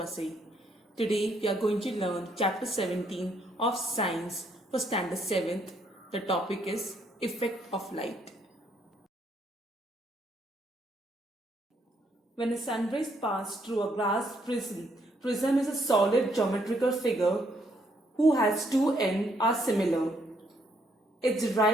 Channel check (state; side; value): normal; both; correlation 0.71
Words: Today, we are going to learn Chapter 17 of Science for Standard 7th. The topic is Effect of Light. When a sunrays pass through a glass prism is a solid geometrical figure whose has two ends are similar. It's